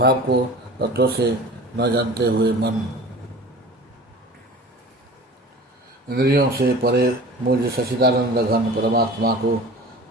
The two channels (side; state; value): both; normal; correlation 0.40